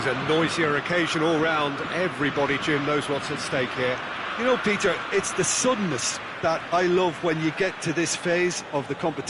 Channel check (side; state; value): both; identical; correlation 1.00